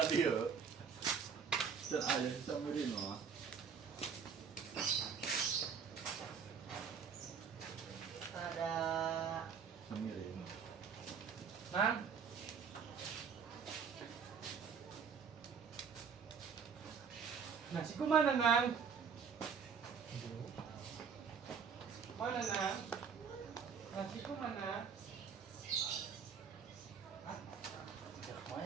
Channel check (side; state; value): left; quieter; 6.5 dB